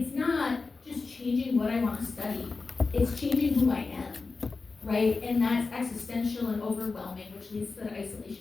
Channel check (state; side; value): quieter; right; 4.1 dB